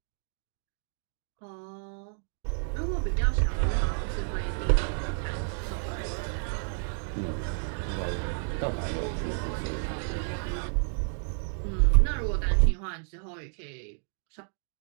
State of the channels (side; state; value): left; silent; 58 dB below the other